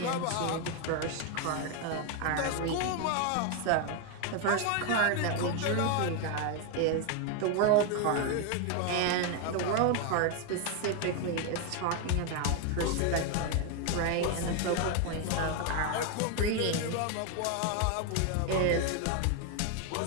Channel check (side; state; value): both; different; correlation 0.01